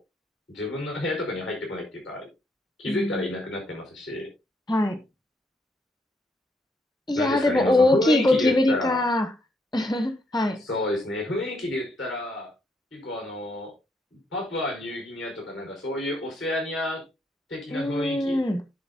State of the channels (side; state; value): both; normal; correlation 0.74